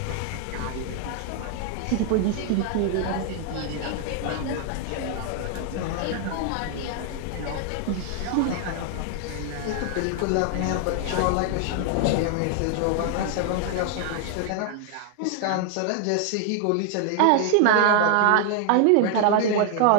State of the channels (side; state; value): both; different; correlation 0.00